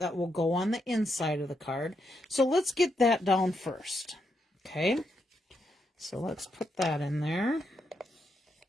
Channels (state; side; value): normal; both; correlation 0.81